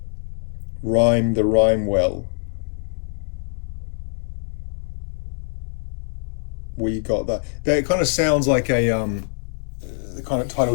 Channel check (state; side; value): silent; right; digital silence